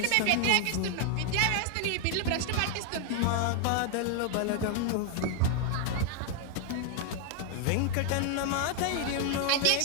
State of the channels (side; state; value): both; different; correlation 0.00